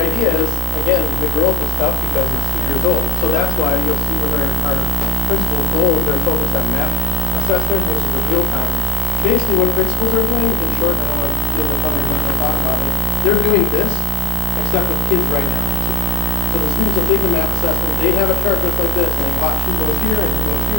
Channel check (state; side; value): normal; both; correlation 0.66